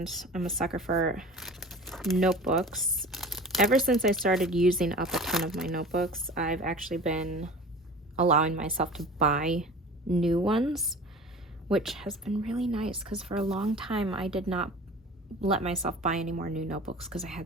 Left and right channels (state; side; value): normal; both; correlation 0.39